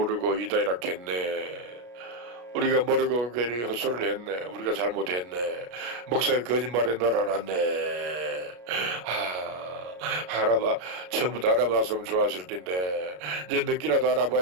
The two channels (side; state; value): left; late; 33 ms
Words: 이다이렇게 했네. 우리가 모르고 괜히 헛소리를 했네. 우리가 잘못했네. 목사가 거짓말에 놀아놨네. 처음부터 알아봤으면 좋았을 텐데 이제 늦게라도